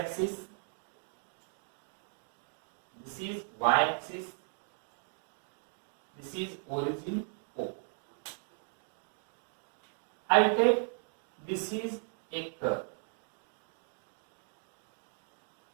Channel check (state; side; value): silent; left; 53 dB below the other